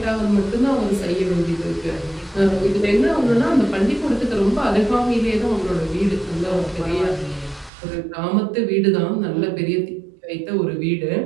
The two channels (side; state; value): left; drops out; at 7.7 s